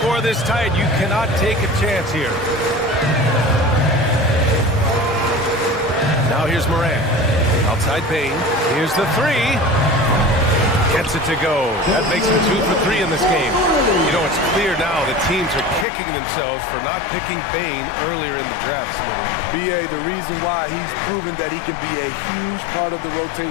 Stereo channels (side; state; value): right; drops out; at 15.9 s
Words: this tight, you cannot take a chance here. Now here's Morant. Outside Bain. Here's the 3. Gets it to go. That makes him 2 for 3 in this game. You know, it's clear now that teams are kicking themselves for not picking Bane earlier in the draft. B.A., the reason why he's proven that he can be a huge part of the